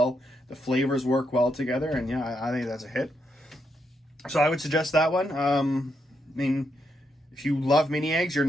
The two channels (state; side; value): normal; both; correlation 0.80